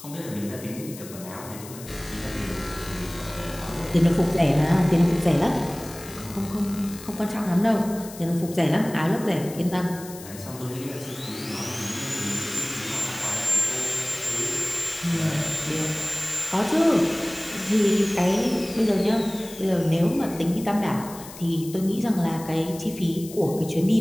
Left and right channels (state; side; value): noise; left; hiss, 15 dB below the sound